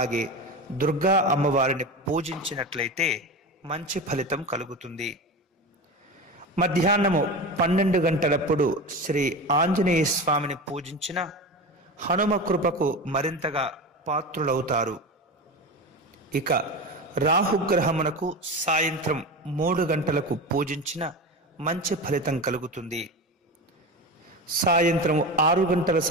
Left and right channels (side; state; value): both; normal; correlation 0.26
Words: దుర్గా అమ్మవారిని పూజించినట్లయితే మంచి ఫలితం కలుగుతుంది. మధ్యాహ్నము 12 గంటలప్పుడు శ్రీ ఆంజనేయ స్వామిని పూజించిన హనుమ కృపకు మరింతగా పాత్రులవుతారు. ఇక రాహుగ్రహమునకు సాయంత్రం 3 గంటలకు పూజించిన మంచి ఫలితం కలుగుతుంది. సాయంత్రం 6 గంటల